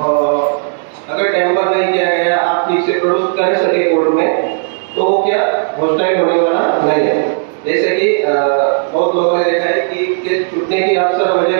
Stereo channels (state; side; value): silent; left; digital silence